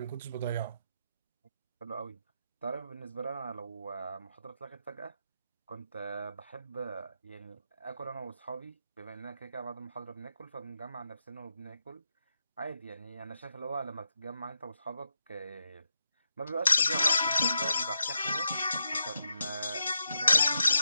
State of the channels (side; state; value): both; inverted; correlation -0.84